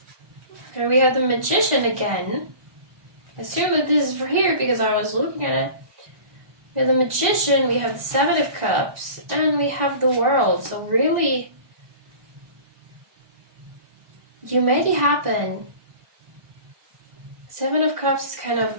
Okay, we have the Magician again. I assume that this is for here because I was looking at it. We have the Magician, we have the Seven of Cups, and we have the World. So really, you made it happen. Seven of Cups is kind of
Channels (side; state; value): left; late; 1.5 ms